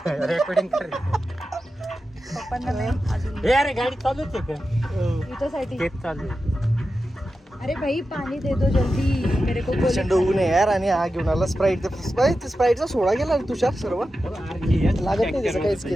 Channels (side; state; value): both; normal; correlation 0.91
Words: रेकॉर्डिंग कर. पप्पांना नाही अजून अरे गाडी चालूच आहे का? इथंसाठी. तेच चालू आहे. अरे भाई पाणी दे दो जल्दी, मेरे को प्रचंड ऊन आहे यार. आणि हा घेऊन आला स्प्राईट. स्प्राईटचा सोडा गेला रे तुषार सर्व. लागत नाही त्याचं, काहीच